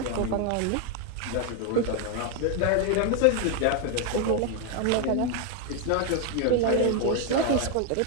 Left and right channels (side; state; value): both; different; correlation 0.01